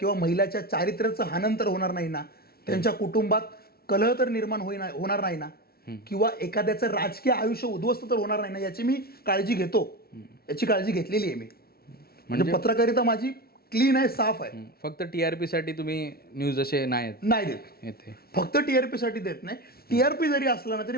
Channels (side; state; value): right; late; 0.44 ms